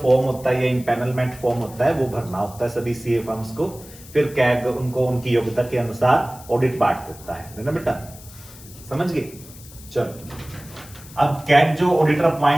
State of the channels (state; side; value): noise; left; hiss, 19 dB below the sound